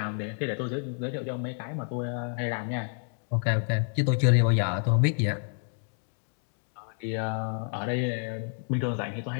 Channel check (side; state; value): right; silent; 58 dB below the other